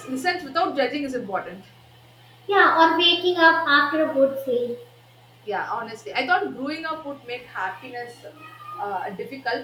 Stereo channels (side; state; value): both; identical; correlation 1.00